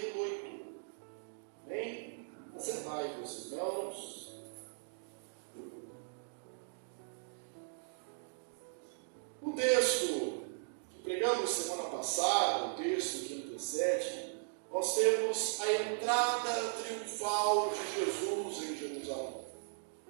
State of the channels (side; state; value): left; silent; digital silence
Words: Amém? Assentai-vos, irmãos. O texto que pregamos semana passada, o texto que antecede, nós temos a entrada triunfal de Jesus em Jerusalém.